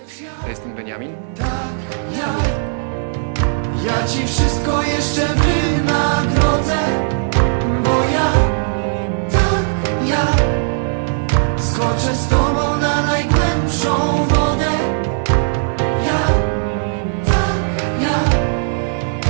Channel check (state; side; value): silent; left; digital silence